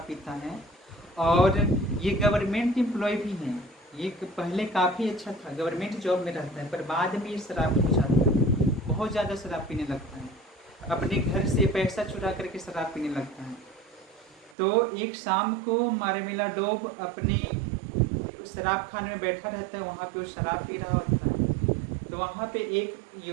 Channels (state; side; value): drops out; left; at 14.6 s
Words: पीता है, और ये गवर्नमेंट एम्प्लॉय भी है। ये पहले काफ़ी अच्छा था, गवर्नमेंट जॉब में रहता है, पर बाद में ये शराबी हो जाता है, बहुत ज़्यादा शराब पीने लगता है, अपने घर से पैसा चुरा करके शराब पीने लगता है। तो एक शाम को मार्मेलाडोव अपने शराब खाने में बैठा रहता है, वहाँ पे वो शराब पी रहा होता है। तो वहाँ पे एक